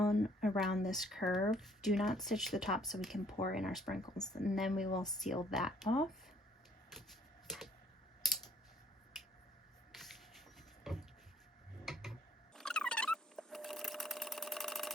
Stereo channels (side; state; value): both; normal; correlation 0.61